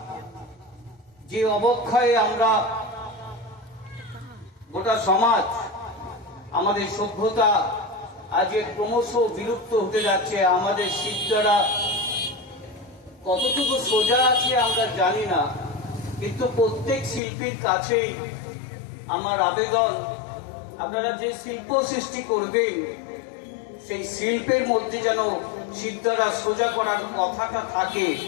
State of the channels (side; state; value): right; drops out; at 17.2 s